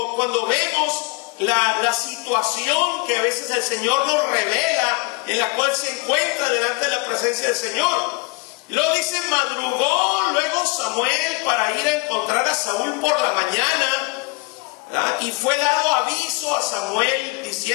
vemos la situación que a veces el Señor nos revela, en la cual se encuentra delante de la presencia del Señor. Y luego dice, madrugó luego Samuel para ir a encontrar a Saúl por la mañana, ¿verdad? Y fue dado aviso a Samuel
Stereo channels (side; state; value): right; quieter; 28.7 dB